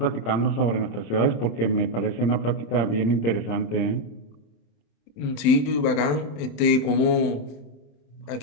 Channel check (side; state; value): right; late; 27 ms